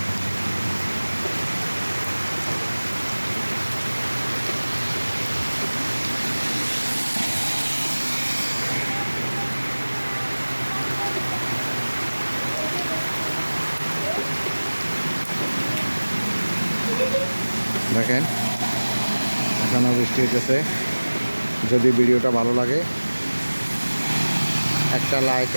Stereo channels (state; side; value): inverted; both; correlation -1.00